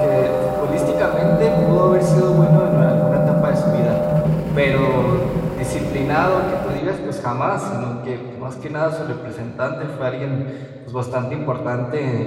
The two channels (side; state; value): both; identical; correlation 1.00